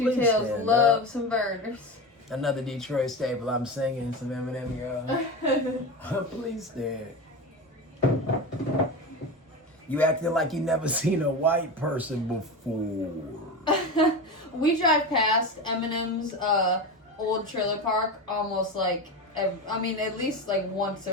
Please tails. stand Love up. some burners. Another Detroit staple. I'm singing some Eminem, y'all. Please stand. You acting like you never seen a white person before. We drive past Eminem's old trailer park almost like, at least like once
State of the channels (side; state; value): both; normal; correlation 0.23